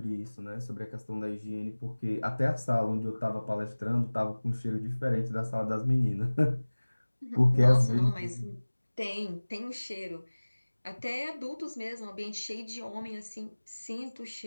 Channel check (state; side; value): inverted; both; correlation -1.00